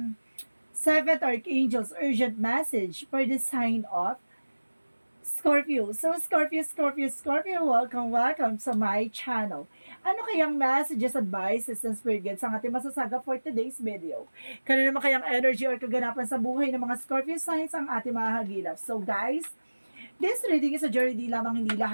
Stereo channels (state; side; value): inverted; both; correlation -1.00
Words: Seventh Archangel's urgent message for the sign of Scorpio. So Scorpio, welcome sa my channel. Ano kayang messages, advices, and spirit guides ang ating masasaga for today's video? Kano naman kayang energy or kaganapan sa buhay ng mga Scorpio signs ang ating mga hagilap? So guys, this reading is a journey, di lamang hindi